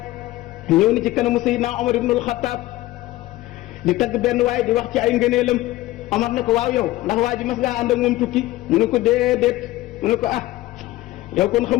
ñëw ni ci kanamu Seydina Omar ibnul Xattaab di tagg benn waay di wax ci ay ngëneelam Omar ne ko waaw yow ndax waa ji mas ngaa ànd ak moom tukki mu ne ko déedéet mu ne ko ah yow kon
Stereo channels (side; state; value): right; quieter; 17.3 dB